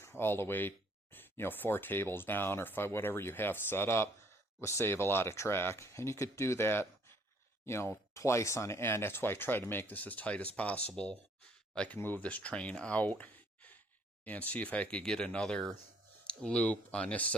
all the way, 4 tables down or 5, whatever you have set up, will save a lot of track. And you could do that, twice on end. That's why I try to make this as tight as possible. I can move this train out and see if I could get another loop on this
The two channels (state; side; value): normal; both; correlation 0.63